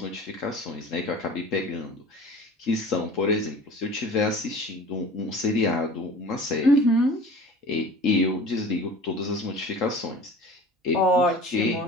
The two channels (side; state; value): both; normal; correlation 0.41